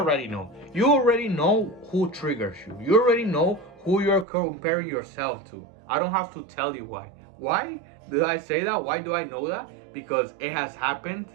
know. You already know who triggers you. You already know who you're comparing yourself to. I don't have to tell you why. Why did I say that? Why do I know that? Because it has happened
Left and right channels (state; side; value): drops out; left; at 4.2 s